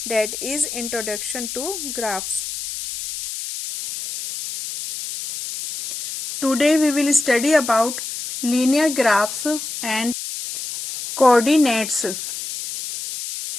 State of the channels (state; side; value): noise; left; hiss, 7 dB below the sound